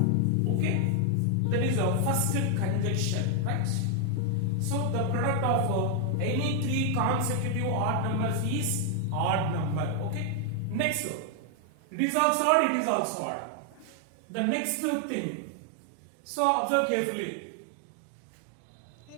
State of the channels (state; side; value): different; both; correlation 0.00